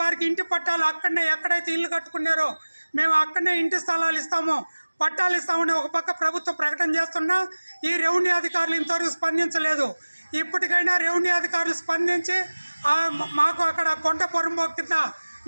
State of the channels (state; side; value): inverted; both; correlation -1.00